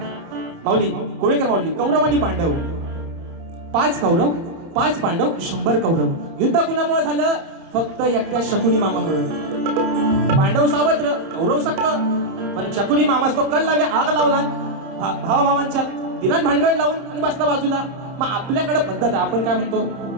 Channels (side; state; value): left; late; 30 ms